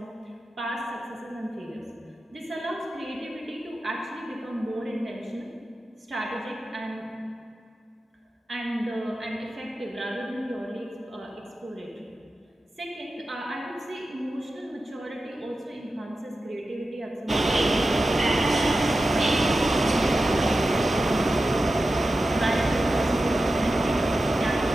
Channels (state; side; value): normal; both; correlation 0.92